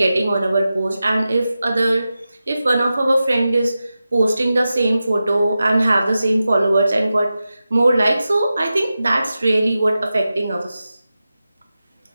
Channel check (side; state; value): both; inverted; correlation -0.93